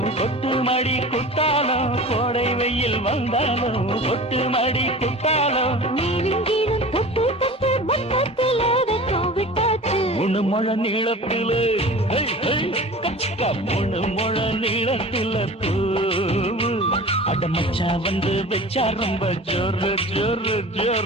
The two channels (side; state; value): both; normal; correlation 0.38